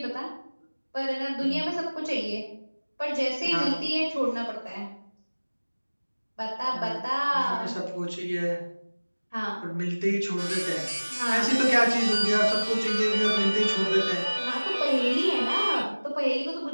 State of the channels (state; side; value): inverted; both; correlation -1.00